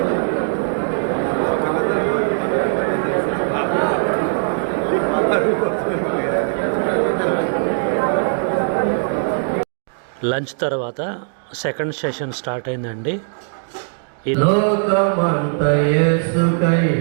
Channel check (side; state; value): left; silent; digital silence